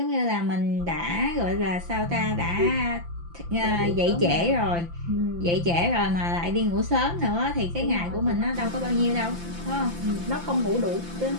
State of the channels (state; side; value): late; left; 5.9 ms